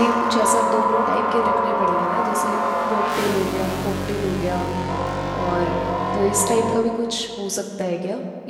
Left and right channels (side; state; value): both; identical; correlation 1.00